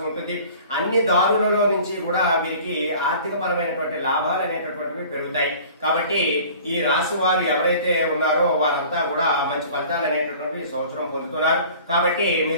ఉంటుంది. అన్ని దారులలో నుంచి కూడా వీరికి ఆర్థిక పరమైనటువంటి లాభాలు అనేటటువంటివి పెరుగుతాయి. కాబట్టి ఈ రాశి వారు ఎవరైతే ఉన్నారో వారంతా కూడా మంచి ఫలితాలు అనేటటువంటి సంవత్సరం పొందుతున్నారు. కాబట్టి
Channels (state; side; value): inverted; both; correlation -0.46